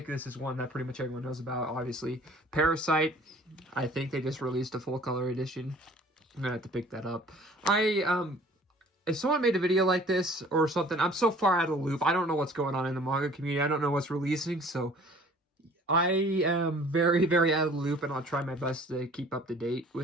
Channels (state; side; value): normal; both; correlation 0.51